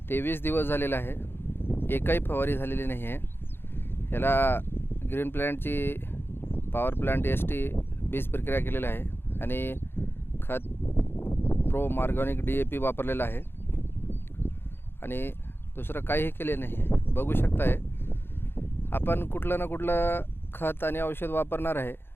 23 दिवस झालेला आहे. एकही फवारी झालेली नाही आहे. याला ग्रीन प्लॅनेटची पॉवर प्लांट ST बीज प्रक्रिया केलेला आहे आणि खत प्रो ऑर्गॅनिक DAP वापरलेला आहे आणि दुसरं काहीही केले नाही आहे. बघू शकताय आपण कुठलं ना कुठलं खत आणि औषध वापरणार आहे.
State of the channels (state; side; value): late; right; 0.11 ms